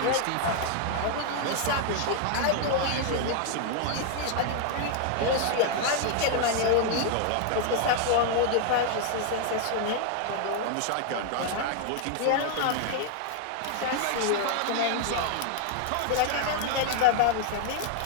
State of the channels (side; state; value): both; different; correlation 0.00